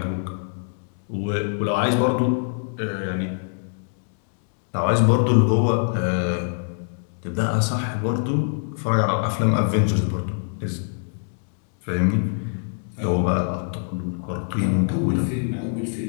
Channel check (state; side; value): silent; right; digital silence